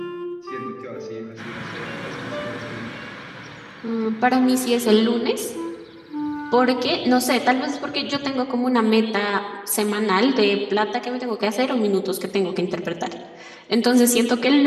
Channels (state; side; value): identical; both; correlation 1.00